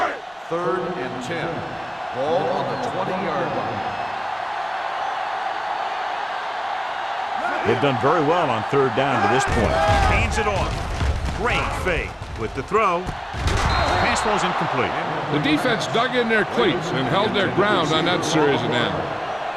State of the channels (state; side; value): identical; both; correlation 1.00